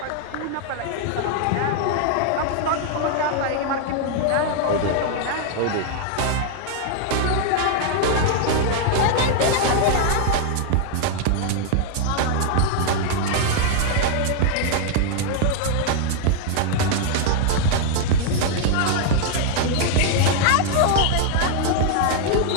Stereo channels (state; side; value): different; both; correlation 0.00